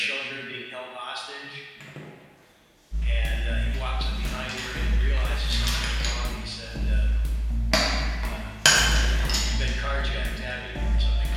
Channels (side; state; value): both; identical; correlation 1.00